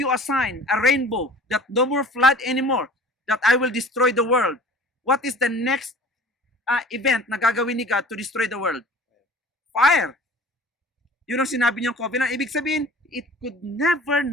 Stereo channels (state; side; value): normal; both; correlation 0.45